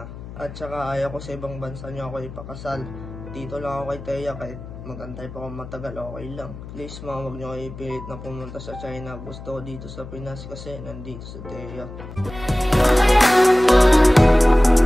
At saka ayaw ko sa ibang bansa niyo ako ipakasal. Dito lang ako kay Teya, kahit magantay pa ako matagal, okay lang. Please ma, huwag niyo kayo ipilit na pumunta sa China. Gusto ko dito sa Pinas kasi nandito sa Teya.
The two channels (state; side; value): noise; left; hum, 13 dB below the sound